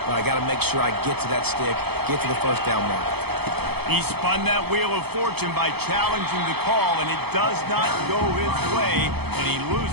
but I got to make sure I get to that stick, get to the first down mark. He spun that wheel of fortune by challenging the call, and it does not go his way, and he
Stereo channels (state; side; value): late; left; 0.97 ms